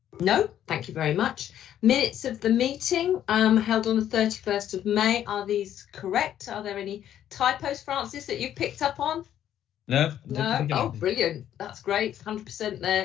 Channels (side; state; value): right; quieter; 10.9 dB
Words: No, thank you very much. Minutes of the meeting held on the 31st of May. Are these correct? Are there any typos, Francis, that you've picked up on? No. Oh, brilliant. That's great. 100%